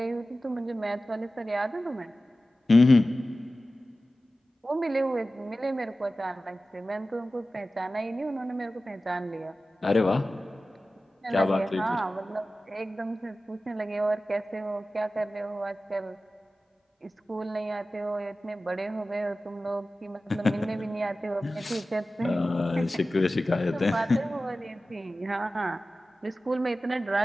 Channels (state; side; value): normal; both; correlation 0.95